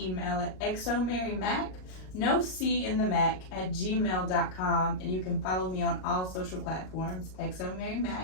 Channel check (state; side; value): late; right; 38 ms